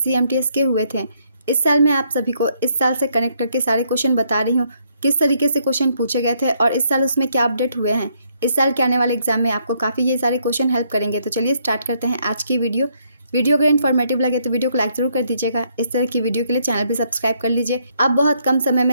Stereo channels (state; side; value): inverted; both; correlation -0.71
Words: एमटीएस के हुए थे। इस साल मैं आप सभी को इस साल से कनेक्ट करके सारे क्वेश्चन बता रही हूँ किस तरीके से क्वेश्चन पूछे गए थे और इस साल उसमें क्या अपडेट हुए हैं। इस साल के आने वाले एग्जाम में आपको काफ़ी ये सारे क्वेश्चन हेल्प करेंगे। तो चलिए स्टार्ट करते हैं आज की वीडियो। वीडियो अगर इन्फॉर्मेटिव लगे तो वीडियो को लाइक जरूर कर दीजिएगा। इस तरह की वीडियो के लिए चैनल भी सब्सक्राइब कर लीजिए। आप बहुत कम समय